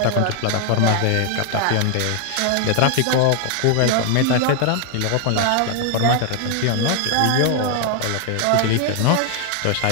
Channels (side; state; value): both; different; correlation 0.00